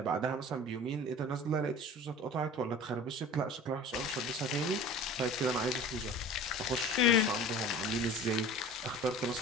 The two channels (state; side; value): normal; both; correlation 0.40